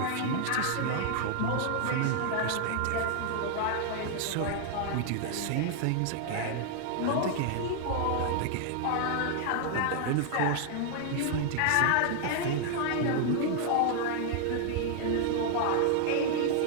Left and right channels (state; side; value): different; both; correlation 0.00